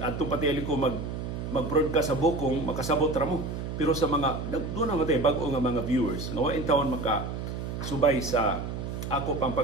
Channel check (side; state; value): right; noise; hum, 5 dB below the sound